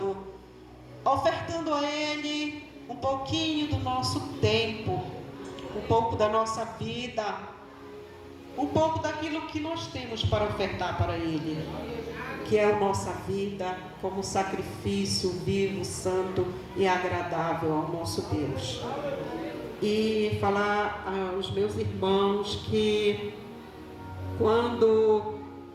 ofertando a Ele um pouquinho do nosso tempo, um pouco da nossa vida, um pouco daquilo que nós temos para ofertar para Ele, que é a nossa vida como sacrifício vivo, santo e agradável ao nosso Deus. E falar aos meus irmãos que quando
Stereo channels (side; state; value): both; identical; correlation 1.00